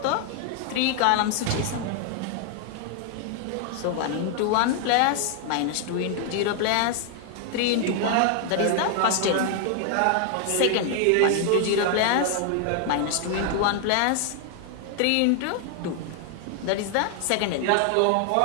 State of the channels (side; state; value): both; different; correlation 0.00